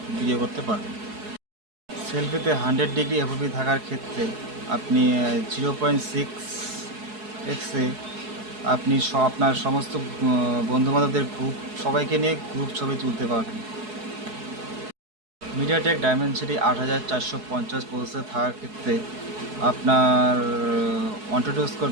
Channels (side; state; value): left; late; 4.7 ms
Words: ভিডিও করতে পারবেন। সেলফিতে 100 ডিগ্রি এফওপি থাকার ক্ষেত্রে আপনি 0.6x-এ আপনি আপনার সমস্ত বন্ধুবান্ধবদের সবাইকে নিয়ে গ্রুপ ছবি তুলতে পারবেন। মিডিয়াটেক ডায়মেনসিটি 8450 প্রসেসর থাকার ক্ষেত্রে আপনার অন্টু